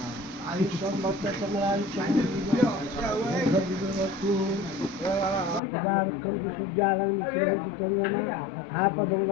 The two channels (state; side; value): drops out; right; at 5.6 s